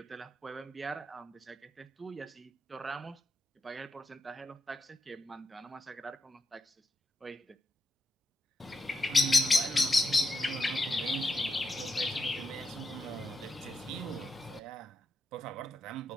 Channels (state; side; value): normal; both; correlation 0.85